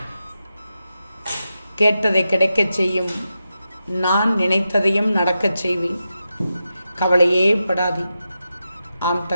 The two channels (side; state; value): both; inverted; correlation -0.89